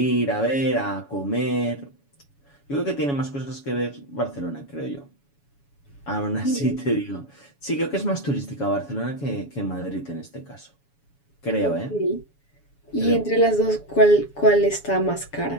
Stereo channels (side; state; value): right; late; 7.1 ms